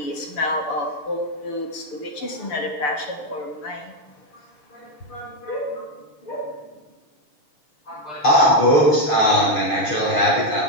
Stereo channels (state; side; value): late; right; 6.8 ms